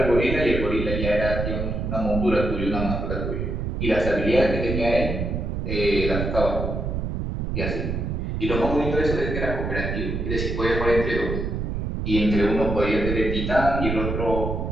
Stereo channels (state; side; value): noise; right; rumble, 2 dB below the sound